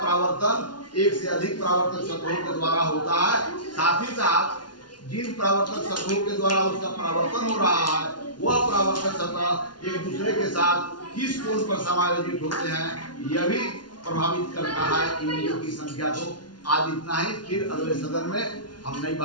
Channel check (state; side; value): late; right; 0.70 ms